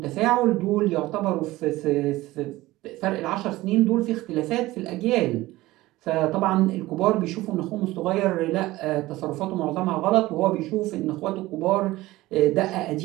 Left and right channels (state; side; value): quieter; left; 18.1 dB